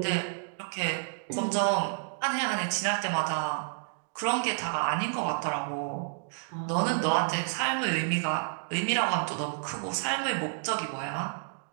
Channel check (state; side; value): silent; left; digital silence